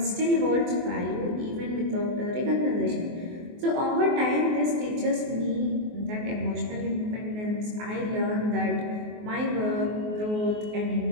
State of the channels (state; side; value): late; left; 24 ms